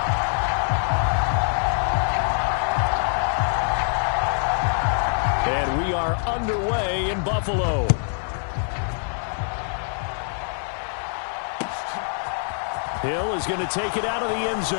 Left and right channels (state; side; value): silent; right; 62 dB below the other